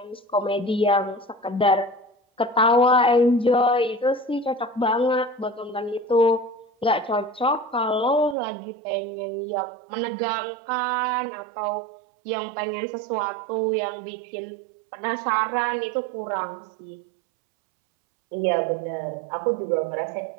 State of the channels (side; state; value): left; drops out; at 8.3 s